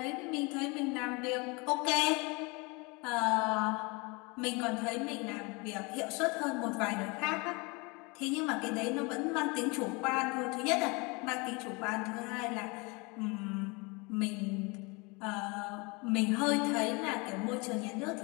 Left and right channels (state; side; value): quieter; right; 28.1 dB